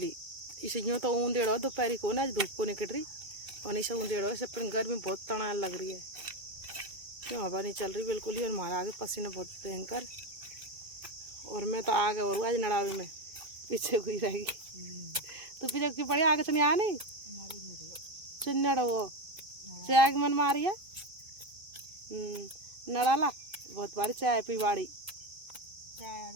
ही, इसे यूँ तो ऊंधेड़ो दोपहर को ना, आज धूप को निकल रही और इसे ऊंधेड़ो ऐसे, पर गर्मी बहुत तनाव लग रही है, क्यों हवा नहीं चल रही बिल्कुल ही। और हमारा आगे पसीना बहुत भयंकर, और मैं तो आगे और आज नड़ावे में पीछे हुई रहेगी। तो पीछे की पड़ी आगे से नहीं आ नहीं चिन्नड़ वो चाय की मन मारी है नड़ाला बहुत बारी चाय पी बाड़ी,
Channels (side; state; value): left; late; 2.6 ms